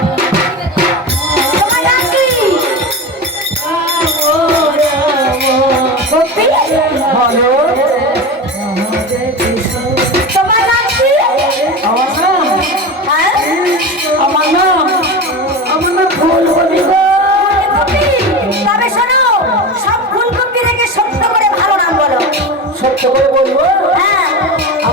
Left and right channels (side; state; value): both; normal; correlation 0.25